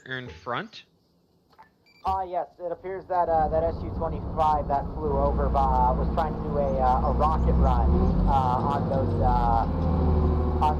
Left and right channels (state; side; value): identical; both; correlation 1.00